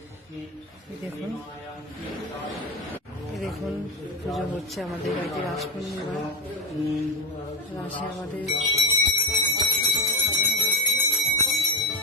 দেখুন পুজো হচ্ছে আমাদের বাড়িতে রাস পূর্ণিমা। রাসে আমাদের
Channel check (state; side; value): normal; both; correlation 0.12